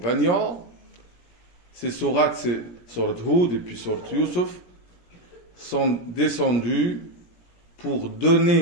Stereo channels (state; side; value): late; right; 17 ms